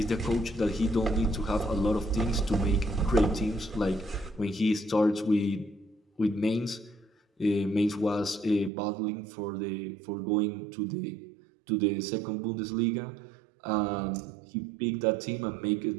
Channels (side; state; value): left; drops out; at 8.7 s